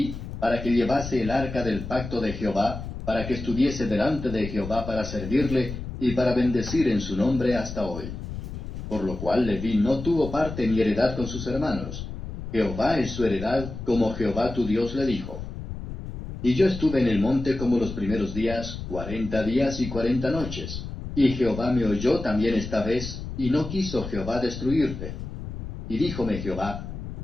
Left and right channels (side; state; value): left; noise; rumble, 8 dB below the sound